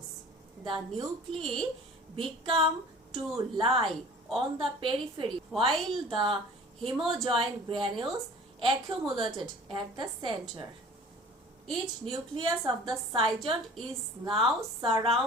The nuclei become to lie on the periphery while the hemojoin granules accumulated at the center. Each nucleus of the zygote is now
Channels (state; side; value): normal; both; correlation 0.45